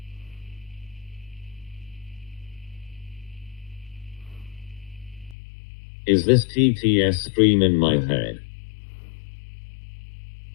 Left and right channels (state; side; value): drops out; right; at 5.4 s